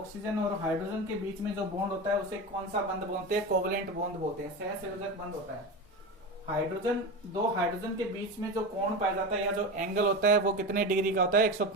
और हाइड्रोजन के बीच में जो बॉन्ड होता है उसे कौन सा बंध बोलते हैं, कोवेलेंट बॉन्ड बोलते हैं, सहसंयोजक बंध होता है। हाइड्रोजन, दो हाइड्रोजन के बीच में जो कोण पाया जाता है या जो एंगल होता है वो कितने डिग्री का होता है,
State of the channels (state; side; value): normal; both; correlation 0.23